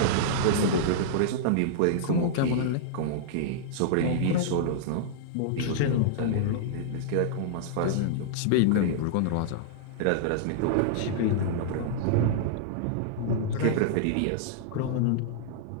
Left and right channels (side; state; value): both; different; correlation -0.02